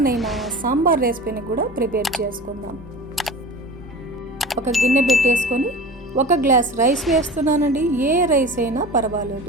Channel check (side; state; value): both; normal; correlation 0.34